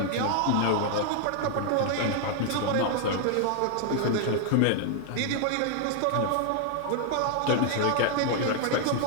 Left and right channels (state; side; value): different; both; correlation 0.00